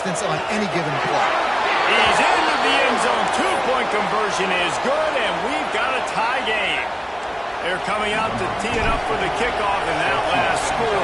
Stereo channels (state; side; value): identical; both; correlation 1.00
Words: on any given play. He's into the end zone. 2-point conversion is good, and we've got a tie game. They're coming out to tee it up for the kickoff, and that last